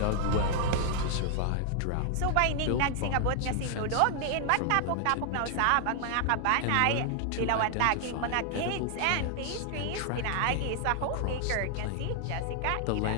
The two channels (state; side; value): different; both; correlation 0.00